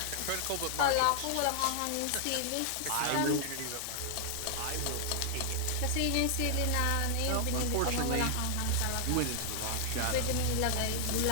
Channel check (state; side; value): different; both; correlation -0.01